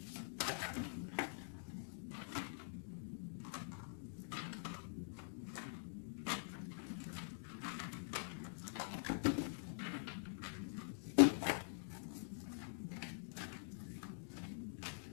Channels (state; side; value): silent; right; digital silence